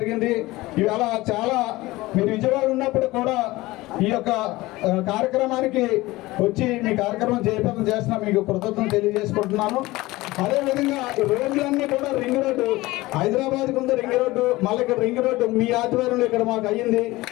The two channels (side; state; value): right; quieter; 19.5 dB